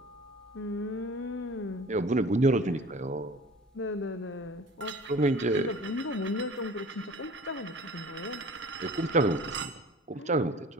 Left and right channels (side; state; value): both; normal; correlation 0.44